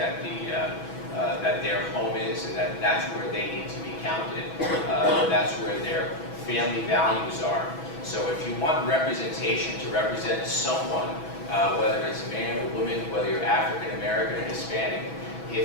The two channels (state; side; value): late; right; 6.1 ms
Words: that their home is, and that's where they need to be counted. That's where their family values are. So if you want representation to represent someone, whether it's a man or woman, whether you're African American or Hispanic,